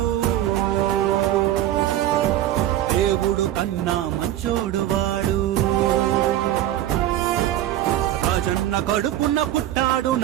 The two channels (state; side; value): quieter; left; 12.9 dB